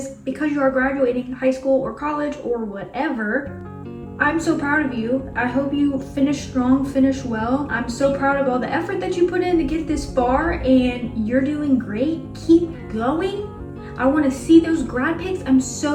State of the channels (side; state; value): both; identical; correlation 1.00